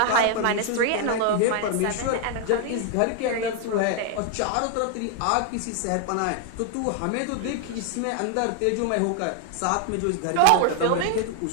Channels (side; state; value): both; different; correlation 0.00